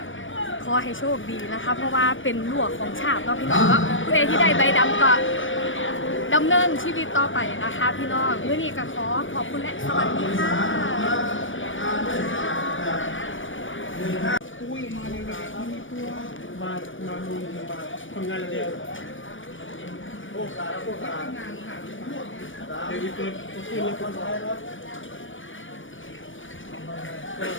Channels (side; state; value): right; late; 0.57 ms